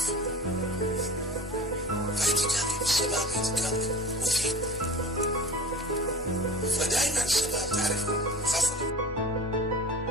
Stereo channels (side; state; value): both; normal; correlation 0.37